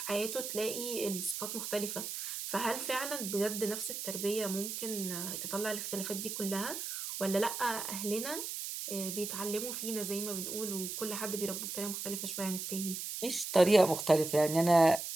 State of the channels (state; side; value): noise; right; hiss, 5 dB below the sound